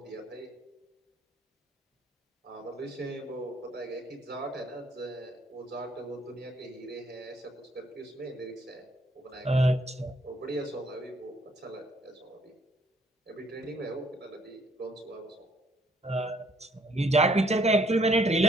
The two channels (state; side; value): normal; both; correlation 0.65